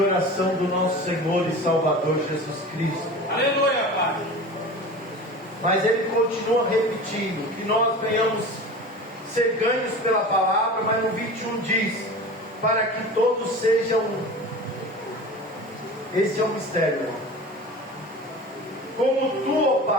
oração do nosso Senhor e Salvador Jesus Cristo. Aleluia, Pai. Mas ele continua repetindo que nós venhamos ser ganhos pela palavra, mas no 21 diz: para que todos sejam um. Esse é o mistério, irmão. Como tu, ó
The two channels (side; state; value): both; normal; correlation 0.35